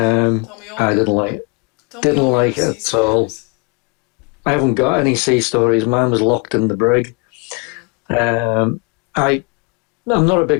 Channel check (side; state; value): right; quieter; 30.0 dB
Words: didn't like it at all. I haven't got any sea stories. Mine was locked in the brig. I'm not a